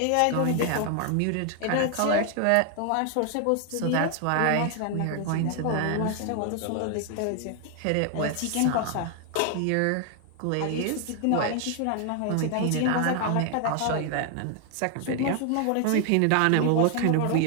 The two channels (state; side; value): different; both; correlation 0.00